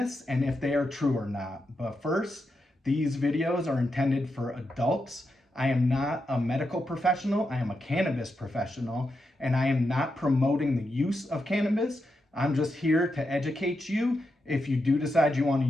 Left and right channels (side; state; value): both; normal; correlation 0.86